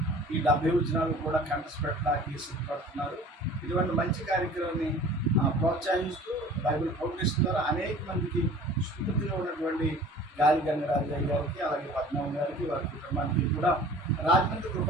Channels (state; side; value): normal; both; correlation 0.46